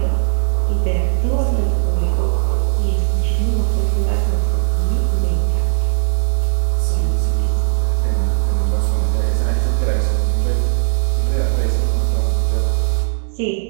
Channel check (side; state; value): left; silent; 65 dB below the other